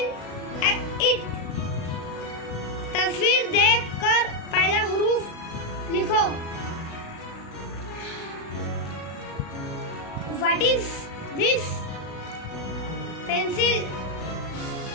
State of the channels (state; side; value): late; right; 36 ms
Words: it. तस्वीर देखकर पहला हरूफ लिखो। What is this? पेंसिल